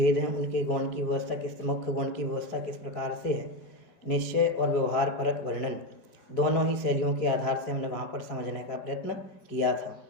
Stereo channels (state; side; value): late; right; 4.7 ms